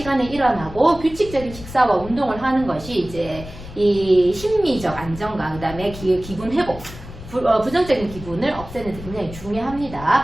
일어나고 규칙적인 식사와 운동을 하는 것이 이제 이 심리적 안정감, 그 다음에 기분 회복, 부정적인 기분을 없애는 데 굉장히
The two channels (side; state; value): left; noise; rumble, 14 dB below the sound